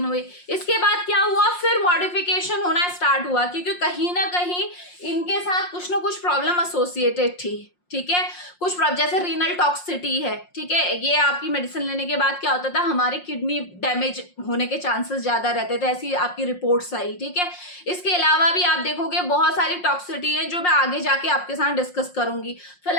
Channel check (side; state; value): right; late; 5.6 ms